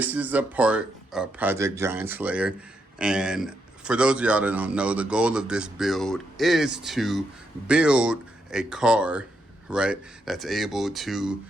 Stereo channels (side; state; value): both; normal; correlation 0.81